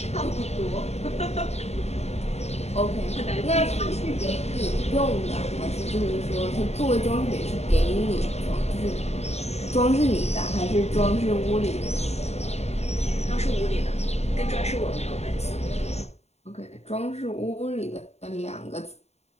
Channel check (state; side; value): late; right; 0.31 ms